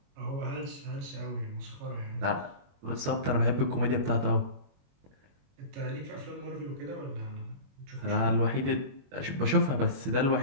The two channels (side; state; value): left; late; 21 ms